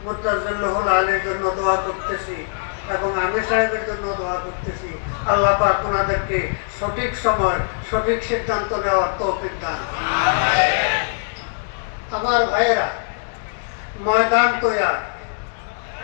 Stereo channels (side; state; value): right; silent; digital silence